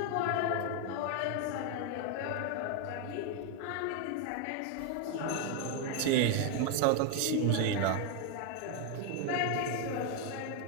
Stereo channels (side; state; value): both; different; correlation 0.01